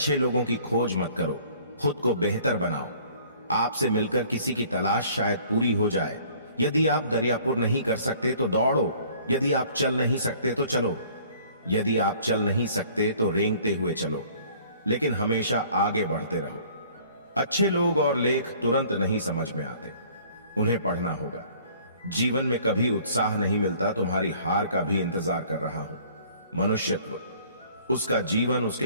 लोगों की खोज मत करो, खुद को बेहतर बनाओ। आपसे मिलकर किसी की तलाश शायद पूरी हो जाए। यदि आप दरियापुर नहीं कर सकते तो दौड़ो, यदि आप चल नहीं सकते तो चलो, यदि आप चल नहीं सकते तो रेंगते हुए चलो, लेकिन हमेशा आगे बढ़ते रहो। अच्छे लोग और लेख तुरंत नहीं समझ में आते, उन्हें पढ़ना होगा। जीवन में कभी उत्साह नहीं मिलता, तुम्हारी हार का भी इंतजार कर रहा हूं। मनुष्यत्व, उसका जीवन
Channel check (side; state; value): both; inverted; correlation -0.54